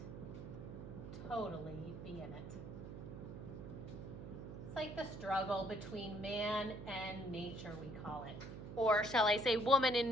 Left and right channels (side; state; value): right; noise; hum, 10 dB below the sound